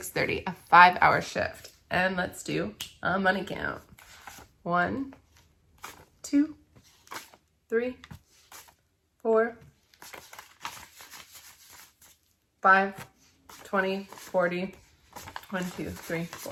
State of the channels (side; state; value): both; identical; correlation 1.00